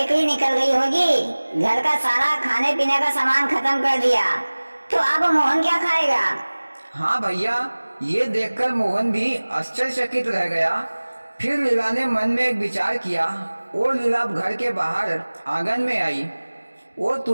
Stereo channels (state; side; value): inverted; both; correlation -1.00